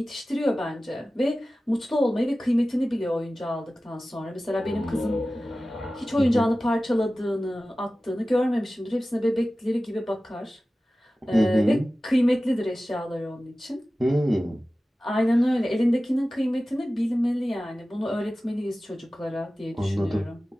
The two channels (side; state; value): both; normal; correlation 0.96